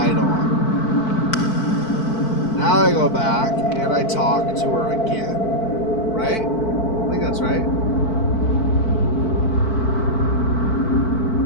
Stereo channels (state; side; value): late; right; 4.5 ms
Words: on. Now I go back and I talk to her again. Right? I think that's right.